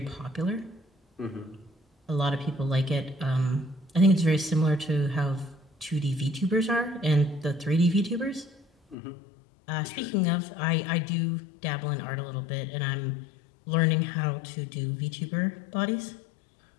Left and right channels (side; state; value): right; drops out; at 9.0 s